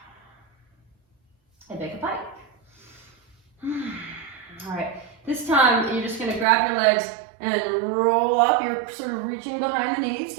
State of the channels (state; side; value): drops out; left; at 6.5 s